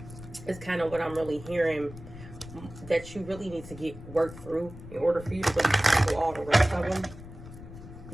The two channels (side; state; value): left; noise; rumble, 15 dB below the sound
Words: is kind of what I'm really hearing that you really need to get worked through in order for you to really tackle all the rest of them.